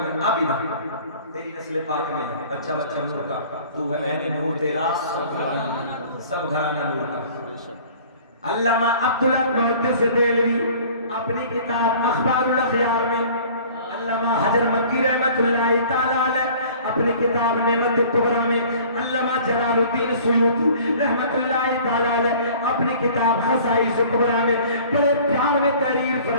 اب ہی تیری نسل پاک میں بچہ بچہ نور کا تو ہے میں نے نور تیرا سب گھرانہ نور کا علامہ عبداللہ محدث دہلوی اپنی کتاب اخبار الاخیار میں علامہ حجر مکی رحمت اللہ تعالی علیہ اپنی کتاب نعمت الکبریٰ میں علامہ جلال الدین سیوطی رحمت اللہ تعالی علیہ اپنی کتاب خصائص الکبریٰ میں بڑے پیار میں تحریر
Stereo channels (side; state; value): both; inverted; correlation -0.49